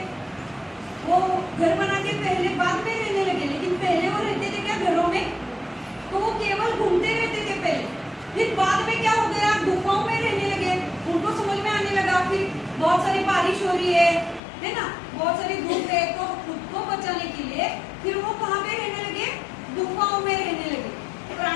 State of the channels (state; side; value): drops out; right; at 14.4 s